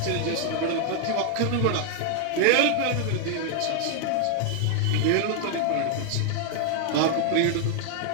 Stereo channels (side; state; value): both; different; correlation 0.00